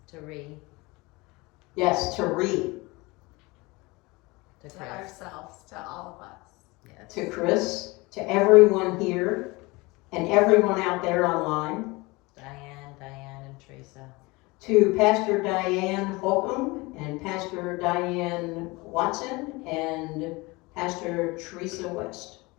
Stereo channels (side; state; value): right; quieter; 23.9 dB